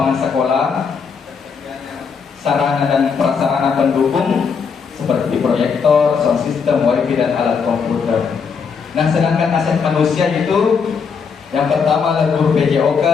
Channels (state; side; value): quieter; right; 5.9 dB